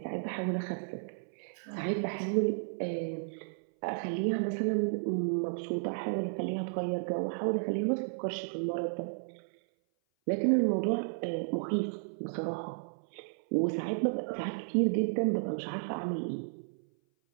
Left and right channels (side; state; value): left; silent; 56 dB below the other